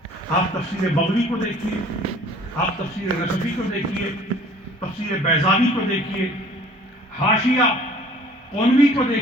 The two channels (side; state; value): both; normal; correlation 0.51